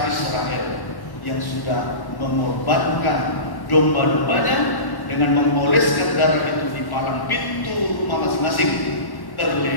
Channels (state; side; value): late; right; 1.1 ms